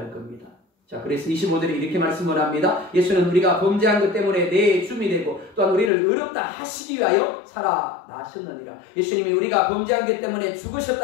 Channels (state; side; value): drops out; right; at 5.9 s